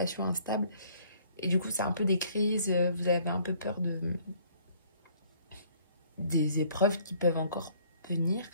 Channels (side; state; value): both; inverted; correlation -0.60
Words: instables. Et du coup, c'est un peu des crises. Vous avez un peu peur des épreuves qui peuvent encore venir.